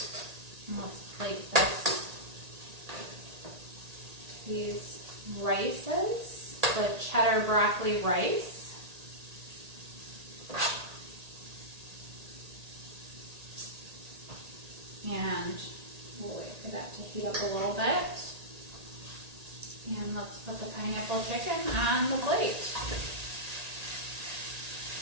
And let's plate these rices, the cheddar broccoli rice. And we'll wait for that to heat up a little bit. And let's put the pineapple chicken on the plate.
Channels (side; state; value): left; late; 1.8 ms